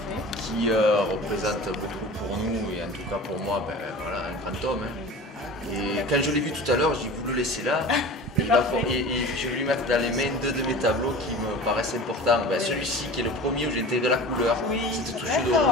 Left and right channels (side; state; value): both; normal; correlation 0.37